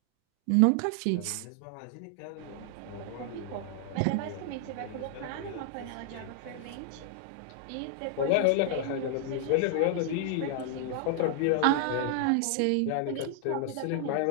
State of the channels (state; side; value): different; both; correlation 0.00